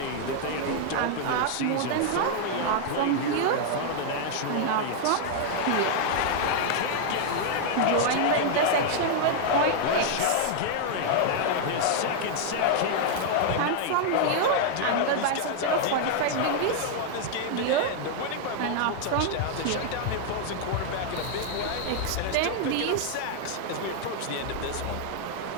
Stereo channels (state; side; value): different; both; correlation 0.00